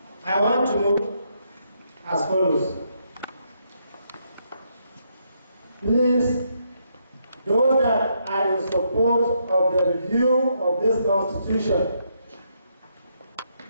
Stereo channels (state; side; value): inverted; both; correlation -0.76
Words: I want to move as follows. Please, those that are in support of the review of this constitution,